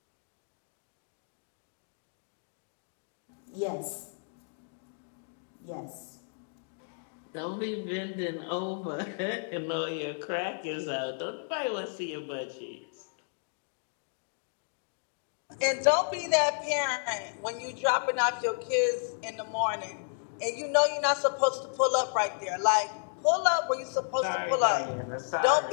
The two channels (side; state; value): right; silent; digital silence